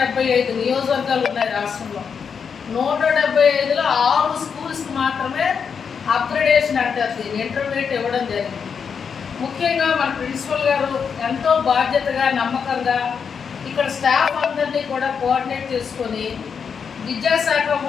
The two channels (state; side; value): quieter; right; 6.5 dB